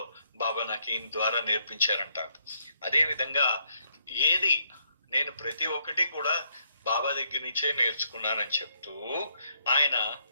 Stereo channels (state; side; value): inverted; both; correlation -0.73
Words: బాబా నాకు ఈయన ద్వారా నేర్పించారంట. అదే విధంగా ఏది నేను ప్రతి ఒక్కటి కూడా బాబా దగ్గర నుంచే నేర్చుకున్నానని చెప్తూ